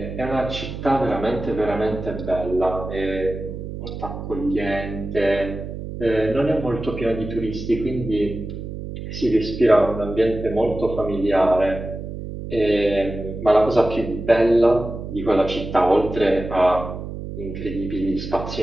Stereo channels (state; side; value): noise; right; hum, 8 dB below the sound